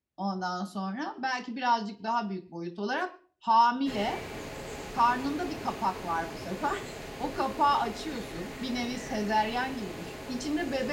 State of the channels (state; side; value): identical; both; correlation 1.00